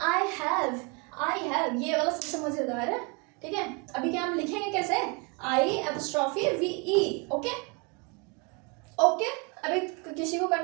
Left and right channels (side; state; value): left; quieter; 31.8 dB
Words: आई हैव, ये वाला सबसे मजेदार है। ठीक है, अभी क्या हम लिखेंगे कैसे, आई एपोस्ट्रोफी वी ई। ओके अभी किसी को